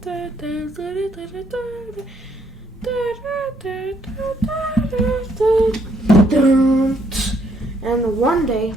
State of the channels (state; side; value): normal; both; correlation 0.70